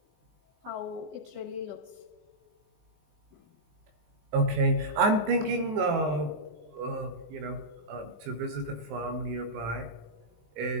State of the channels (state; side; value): late; left; 19 ms